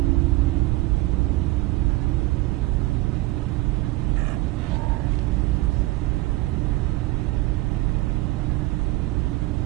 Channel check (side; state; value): left; quieter; 20.1 dB